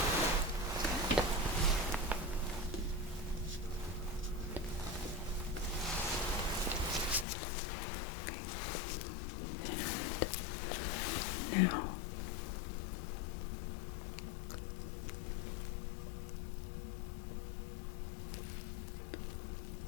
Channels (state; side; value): drops out; right; at 7.2 s